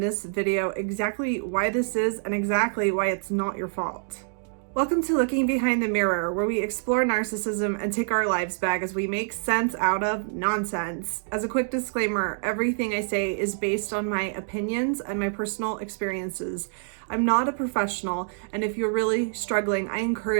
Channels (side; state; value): left; silent; digital silence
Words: video exactly why this is and exactly why it's not your fault. Welcome to Looking Behind the Mirror, where we explore narcissism and take our lives back as we make sense out of nonsense. As a quick disclaimer, everything I say is based on my opinions and my personal experiences. I'm not a professional, and if you're really struggling, I